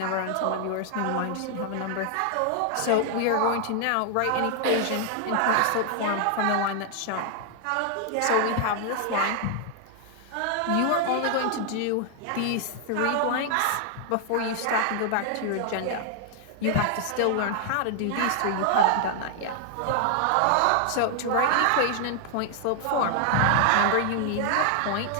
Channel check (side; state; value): both; different; correlation 0.00